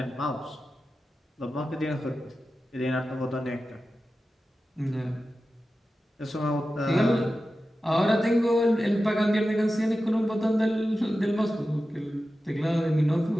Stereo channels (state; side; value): normal; both; correlation 0.93